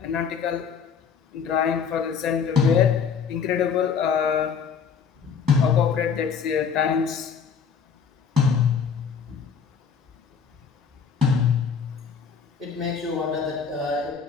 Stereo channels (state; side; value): quieter; right; 6.5 dB